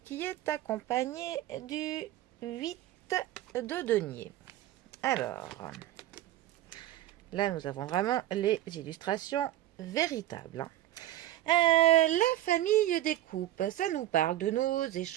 qui est accompagné du 8 de denier. Alors, là, nous avons vraiment les illustrations véritables. La famille des coupes, ça nous parle de nos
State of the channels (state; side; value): quieter; left; 14.2 dB